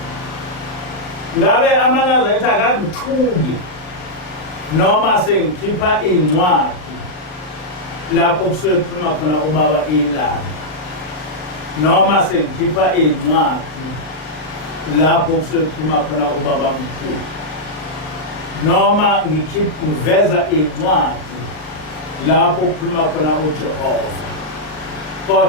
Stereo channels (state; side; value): late; right; 38 ms